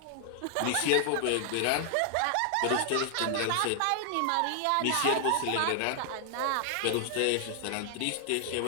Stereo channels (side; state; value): both; different; correlation 0.00